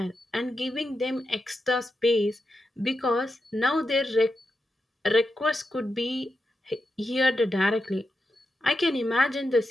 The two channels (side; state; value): both; normal; correlation 0.87